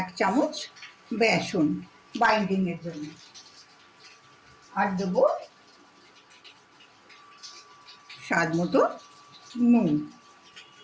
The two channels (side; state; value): both; identical; correlation 1.00